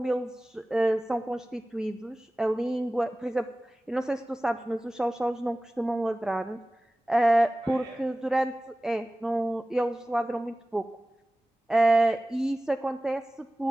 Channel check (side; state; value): both; normal; correlation 0.97